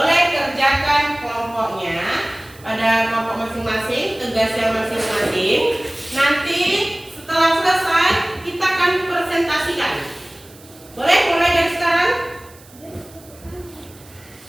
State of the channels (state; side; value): noise; right; hiss, 24 dB below the sound